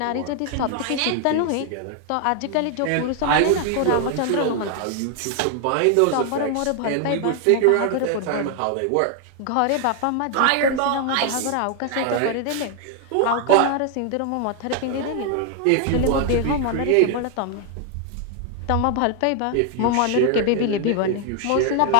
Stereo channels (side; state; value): both; different; correlation 0.00